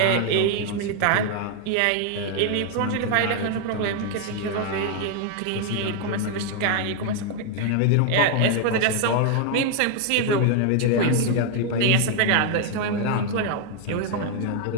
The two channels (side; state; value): both; different; correlation 0.00